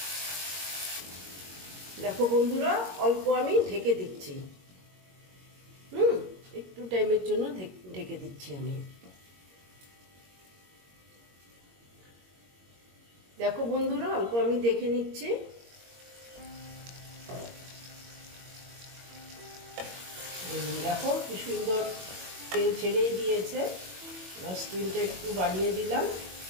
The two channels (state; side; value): late; left; 21 ms